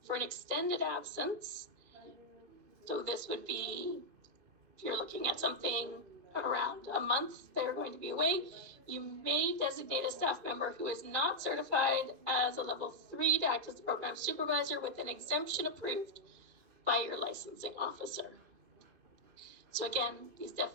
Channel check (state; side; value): late; left; 2.5 ms